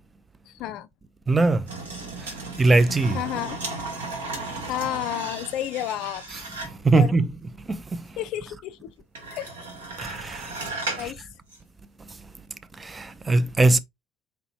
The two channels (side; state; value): both; normal; correlation 0.78